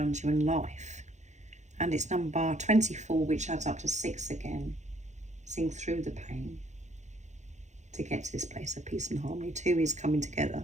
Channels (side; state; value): left; late; 0.34 ms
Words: you in life. And it's number 24, which adds up to 6 again. Seeing through the pain to get to this place of peace and harmony. 2 is coming